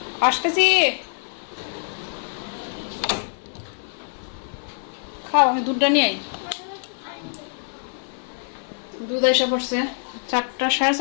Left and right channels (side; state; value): right; silent; digital silence